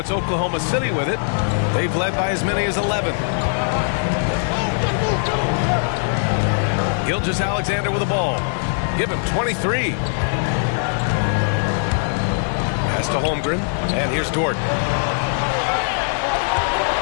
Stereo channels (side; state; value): right; silent; digital silence